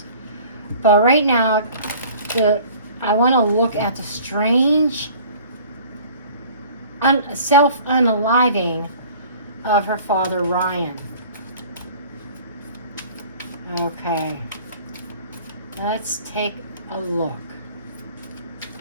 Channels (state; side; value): inverted; both; correlation -0.48